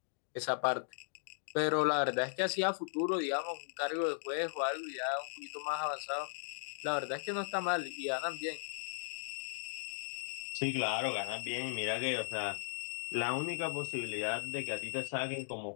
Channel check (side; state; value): right; silent; digital silence